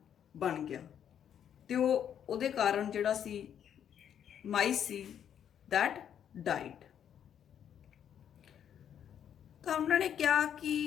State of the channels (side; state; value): right; quieter; 9.2 dB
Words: ਬਣ ਗਿਆ ਤੇ ਉਹਦੇ ਕਾਰਨ ਜਿਹੜਾ ਸੀ ਮਾਈਸ ਸੀ ਦੈਟ ਡਾਈਡ। ਤਾਂ ਉਹਨਾਂ ਨੇ ਕਿਹਾ